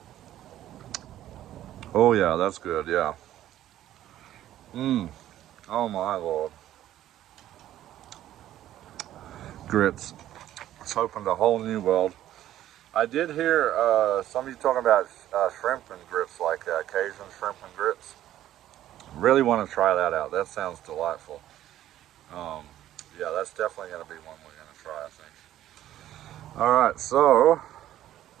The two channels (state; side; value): quieter; left; 12.8 dB